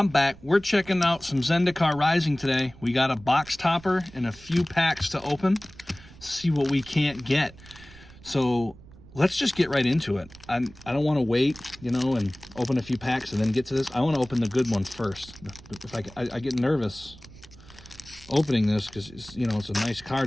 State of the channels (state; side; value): noise; right; rumble, 21 dB below the sound